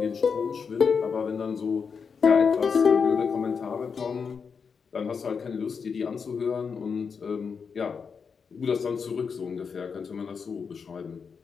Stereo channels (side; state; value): right; quieter; 5.9 dB